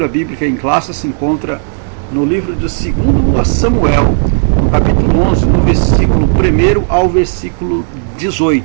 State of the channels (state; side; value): silent; left; 69 dB below the other